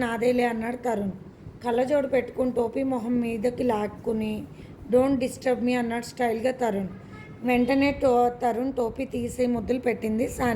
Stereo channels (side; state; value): both; identical; correlation 1.00